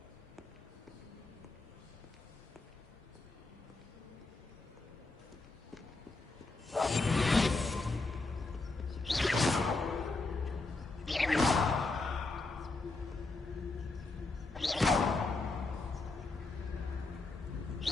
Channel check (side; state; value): right; quieter; 3.4 dB